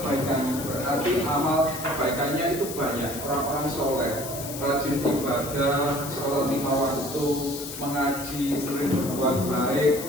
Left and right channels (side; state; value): left; noise; hiss, 9 dB below the sound